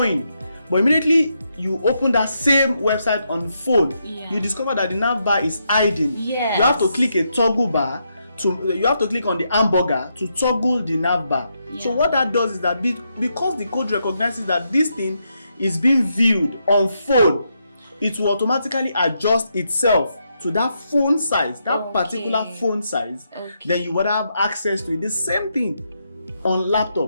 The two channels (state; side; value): inverted; both; correlation -0.81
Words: but immediately you open that same website on phone, you discover that the nav bar is hiding. Yes. You have to click a toggle bar you have to click on the hamburger to toggle the nav bar. So what that does is that because the code recognizes that this thing is being viewed on phone, it will automatically adjust itself to that phone size, that particular phone size. Then you would have access to it. The same thing on